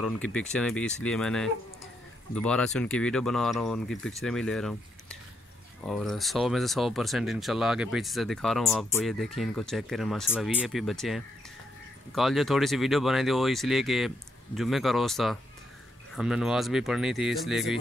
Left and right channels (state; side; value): normal; both; correlation 0.78